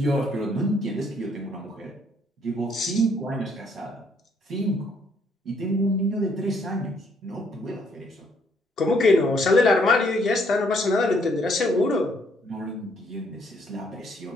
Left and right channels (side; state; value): both; normal; correlation 0.68